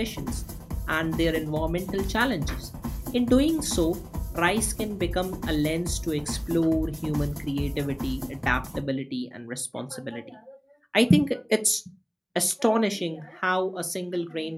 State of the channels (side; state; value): both; identical; correlation 1.00